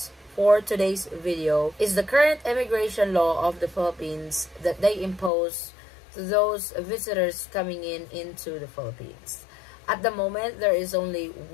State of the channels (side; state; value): right; drops out; at 5.3 s